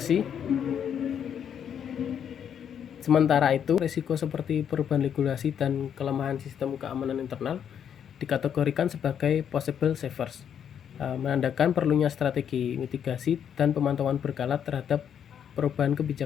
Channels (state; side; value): quieter; right; 8.6 dB